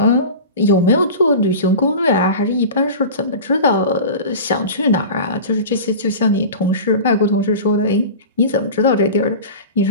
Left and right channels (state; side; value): inverted; both; correlation -0.33